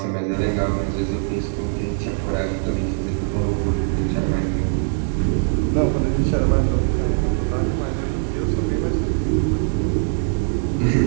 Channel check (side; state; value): left; silent; 65 dB below the other